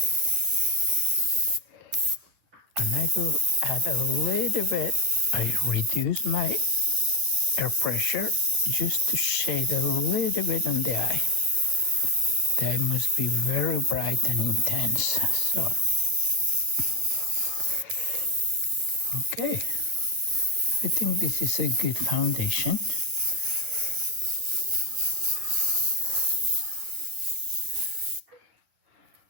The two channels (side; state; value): left; late; 10 ms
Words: And I will add a little bit. I reduce my air pressure just to shade a little bit on the eye. The eye must be very bright and intense. So, okay. I think this is a good foundation.